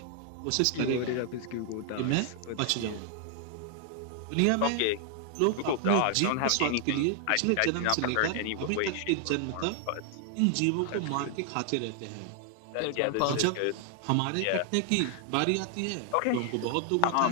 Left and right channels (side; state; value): both; different; correlation 0.00